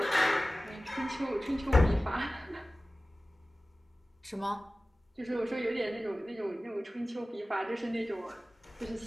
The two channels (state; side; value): normal; both; correlation 0.97